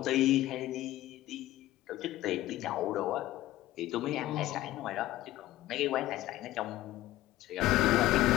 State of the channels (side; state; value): right; quieter; 15.7 dB